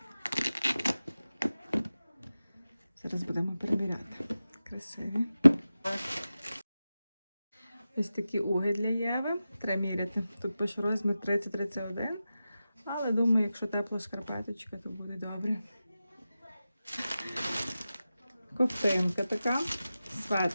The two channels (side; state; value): both; inverted; correlation -0.94